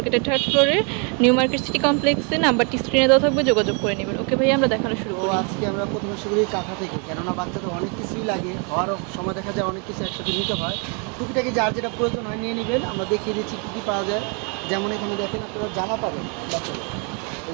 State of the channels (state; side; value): quieter; left; 36.2 dB